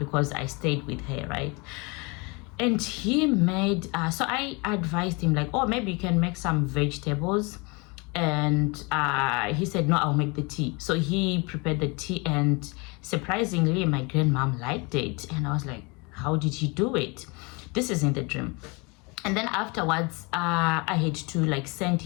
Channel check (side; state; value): right; quieter; 28.7 dB